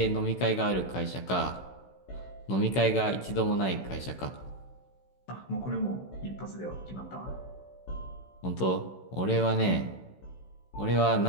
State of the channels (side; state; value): right; late; 16 ms